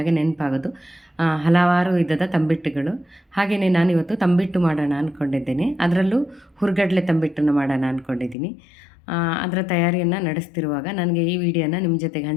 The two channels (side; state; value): right; drops out; at 8.3 s